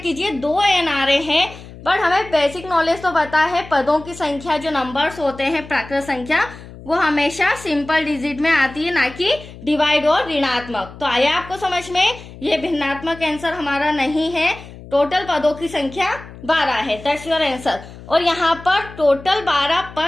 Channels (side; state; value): left; noise; hum, 17 dB below the sound